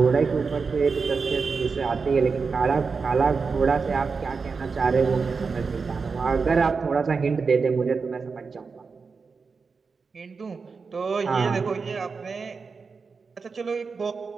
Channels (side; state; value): left; quieter; 4.9 dB